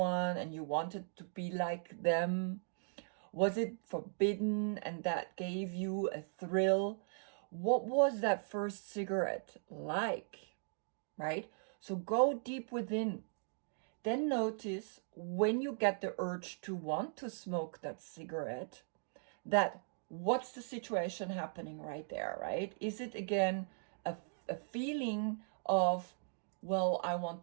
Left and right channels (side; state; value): left; silent; digital silence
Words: and you wanted to be like them? Was it forbidden and that gave you a thrill? What was that first cigarette like, right? So go deep within. Then notice when you get the urge to want to smoke that cigarette, that what's the situation happening right there, right? Is it again a feeling of, well, I want